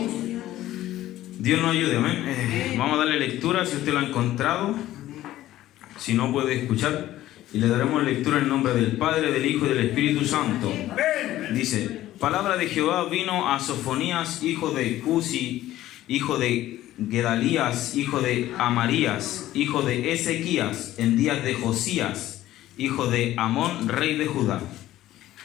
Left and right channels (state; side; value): quieter; right; 14.4 dB